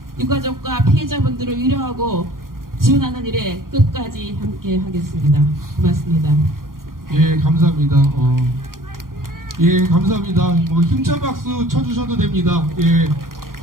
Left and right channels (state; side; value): late; left; 0.91 ms